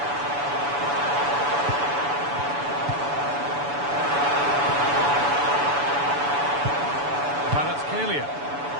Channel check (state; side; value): late; left; 7.0 ms